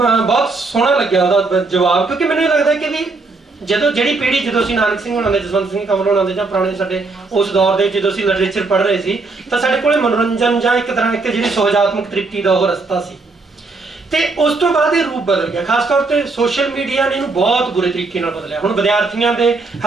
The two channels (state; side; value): quieter; left; 3.8 dB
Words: ਸੋਹਣਾ ਲੱਗਿਆ ਉਹਦਾ ਜਵਾਬ, ਕਿਉਂਕਿ ਮੈਨੂੰ ਇਹ ਲੱਗਦਾ ਕਿ ਵੀ ਜਦੋਂ ਅਸੀਂ ਨਾਨਕ ਸਿੰਘ ਹੋਣਾ ਦੇ, ਜਸਵੰਤ ਸਿੰਘ ਕੰਵਲ ਹੋਣਾ ਦੇ ਜਾਂ ਪੁਰਾਣੇ ਸਾਡੇ ਉਸ ਦੌਰ ਦੇ ਜਦੋਂ ਅਸੀਂ ਲਿਟਰੇਚਰ ਪੜ੍ਹ ਰਹੇ ਸੀ ਤਾਂ ਸਾਡੇ ਕੋਲੇ ਮਨੋਰੰਜਨ ਜਾਂ ਇੱਕ ਤਰ੍ਹਾਂ ਇੱਕ ਜਿਹੜੀ ਸੁਹਜਾਤਮਕ ਤ੍ਰਿਪਤੀ ਦਾ ਉਹ ਰਸਤਾ ਸੀ। ਤੇ ਉਸ ਤੋਂ ਬਾਅਦ ਇਹ ਰੂਪ ਬਦਲ ਗਿਆ। ਖਾਸ ਤੌਰ ਤੇ ਸੋਸ਼ਲ ਮੀਡੀਆ ਨੇ ਇਹਨੂੰ ਬਹੁਤ ਬੁਰੇ ਤਰੀਕੇ ਨਾਲ ਬਦਲਿਆ। ਹੁਣ ਵਿਦਿਆਰਥੀਆਂ ਦੇ,